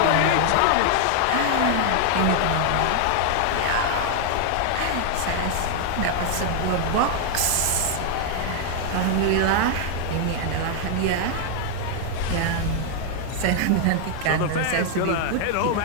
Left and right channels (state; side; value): different; both; correlation 0.00